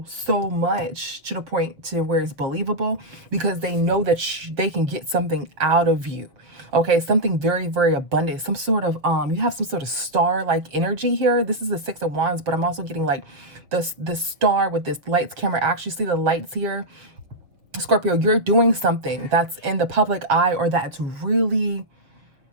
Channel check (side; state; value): left; late; 6.6 ms